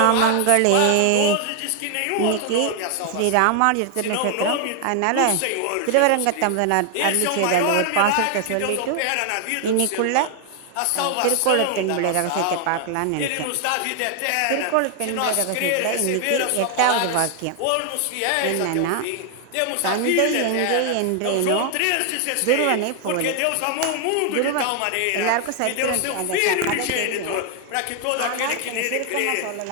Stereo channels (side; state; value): both; different; correlation 0.00